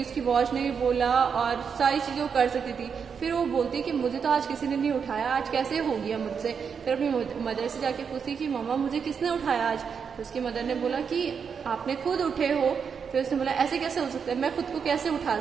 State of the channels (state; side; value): quieter; left; 6.5 dB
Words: उसकी वॉच ने भी बोला और सारी चीजें वो कर सकती थी। फिर वो बोलती कि मुझे तो आज किसी ने नहीं उठाया, आज कैसे हो गया मुझसे? फिर अपनी मदर से जाके पूछती कि मम्मा मुझे किसने उठाया आज? तो उसकी मदर ने बोला कि आपने खुद उठे हो। फिर उसने बोला ऐसे कैसे हो सकता है, मैं खुद को कैसे उठा